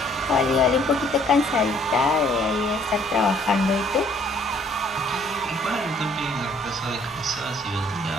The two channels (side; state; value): both; normal; correlation 0.61